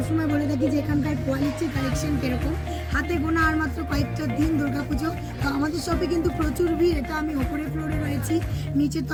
বলে থাকি যে এখানকার কোয়ালিটি কালেকশন কীরকম। হাতে গোনা আর মাত্র কয়েকটা দিন দুর্গাপুজো, তো আমাদের শপে কিন্তু প্রচুর ভিড়। এটা আমি ওপরের ফ্লোরে রয়েছি, নিচের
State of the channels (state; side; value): identical; both; correlation 1.00